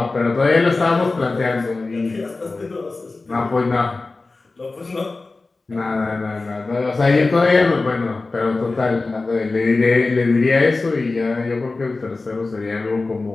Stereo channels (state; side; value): quieter; right; 3.6 dB